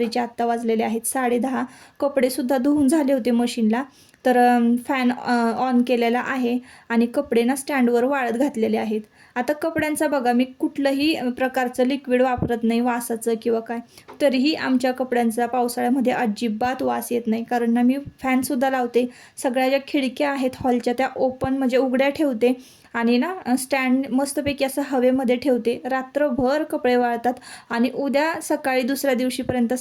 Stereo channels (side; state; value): both; identical; correlation 1.00